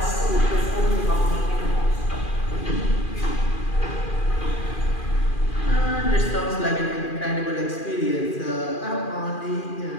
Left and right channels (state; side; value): late; right; 2.4 ms